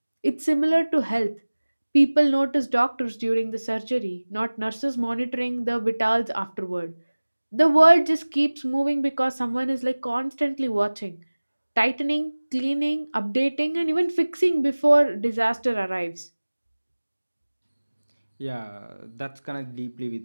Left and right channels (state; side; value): inverted; both; correlation -1.00